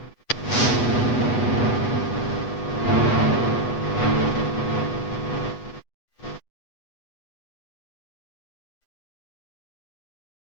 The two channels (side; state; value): right; late; 8.2 ms